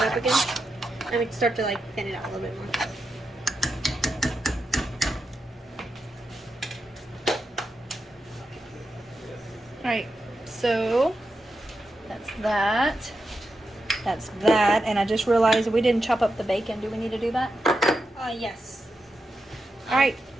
up again. I mean, start to like thin it out a little bit more. Alright, so that's that. That's that. And I just realized we didn't chop up the bacon. Do we need to do that? Yes. Alright.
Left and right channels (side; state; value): both; normal; correlation 0.87